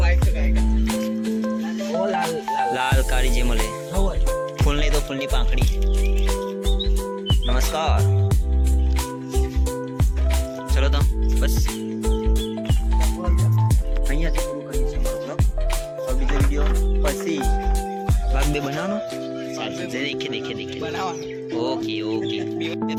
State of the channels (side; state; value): both; identical; correlation 1.00